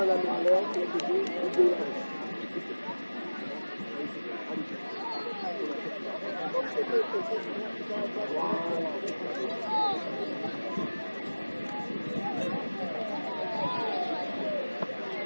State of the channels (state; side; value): inverted; both; correlation -1.00